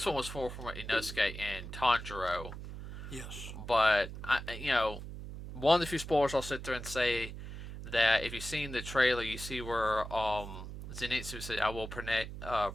one was for Inosuke and Tanjiro. Yes. But one of the few spoilers I'll sit there and say that if you've seen the trailer, you see where Zenitsu said, "I will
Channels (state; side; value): noise; right; hum, 10 dB below the sound